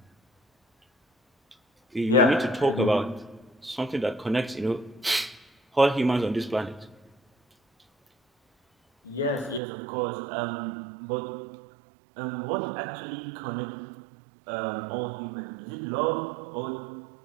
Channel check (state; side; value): drops out; left; at 9.6 s